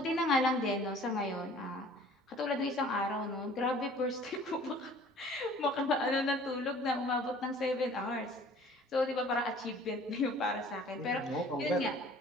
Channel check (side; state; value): both; normal; correlation 0.50